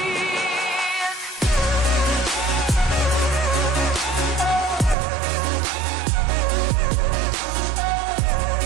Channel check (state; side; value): drops out; left; at 5.0 s